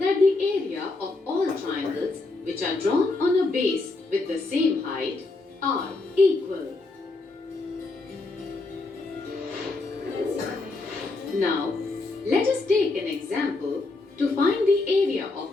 the area of all triangles which are drawn on a base with the same height are equal. Now, let us take an example to find the area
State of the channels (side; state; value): right; quieter; 3.4 dB